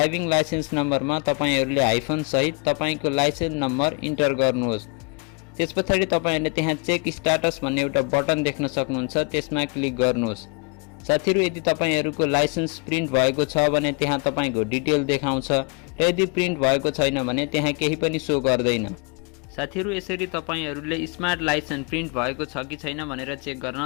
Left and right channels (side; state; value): right; quieter; 33.6 dB